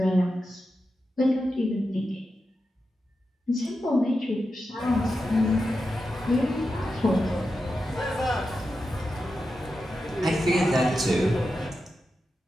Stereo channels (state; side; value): normal; both; correlation 0.90